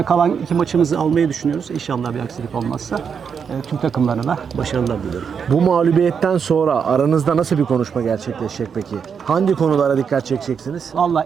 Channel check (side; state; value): left; quieter; 6.7 dB